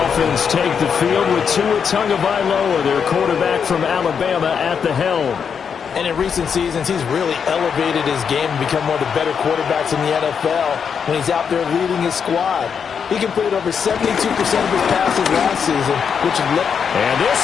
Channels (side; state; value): right; quieter; 6.8 dB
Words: take the field with Tua Tagovailoa, their quarterback from Alabama, at the helm. And in recent seasons, he's really elevated his game and become one of the better quarterbacks in the NFL when he's out there leading his squad. He completed over 72% of his passes last season, which is... And this